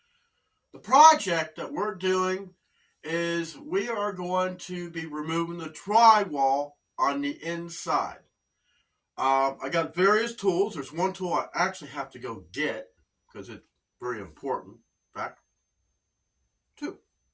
The project that we're doing is we are going to be removing the drywall on the inside. I got various tools. There's one tool I actually have to go get because it's very important. In fact, two.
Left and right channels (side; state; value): both; identical; correlation 1.00